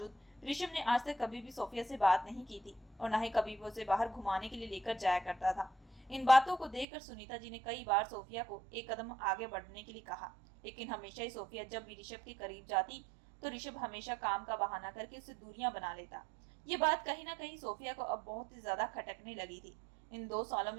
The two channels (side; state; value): left; drops out; at 6.9 s